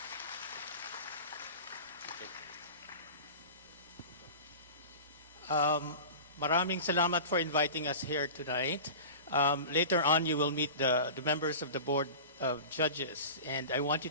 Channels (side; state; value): both; inverted; correlation -0.34